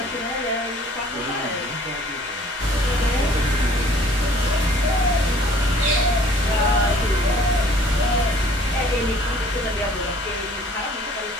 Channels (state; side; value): normal; both; correlation 0.55